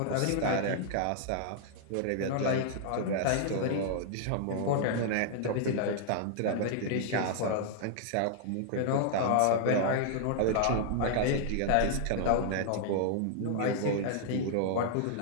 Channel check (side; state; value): both; different; correlation -0.01